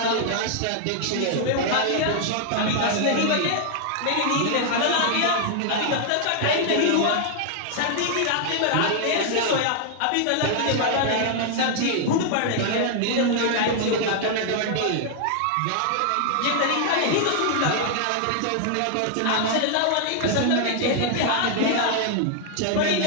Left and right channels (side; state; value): both; different; correlation 0.00